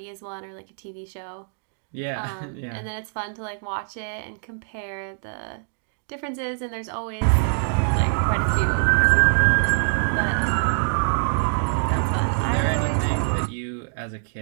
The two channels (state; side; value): silent; left; digital silence